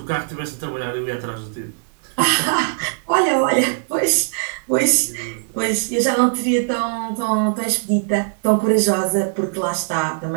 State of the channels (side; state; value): left; silent; 66 dB below the other